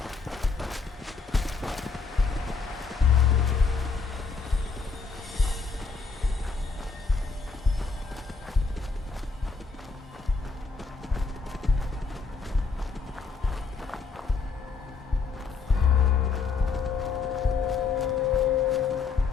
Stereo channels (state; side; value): quieter; right; 4.8 dB